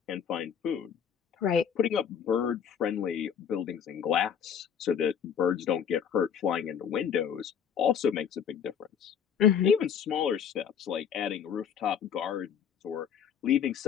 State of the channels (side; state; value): right; quieter; 7.9 dB